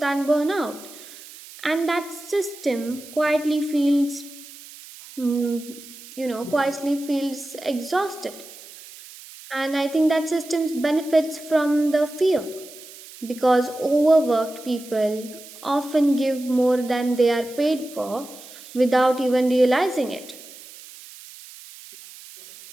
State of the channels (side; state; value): right; noise; hiss, 18 dB below the sound